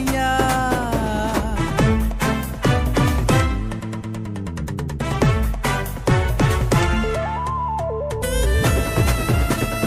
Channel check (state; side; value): identical; both; correlation 1.00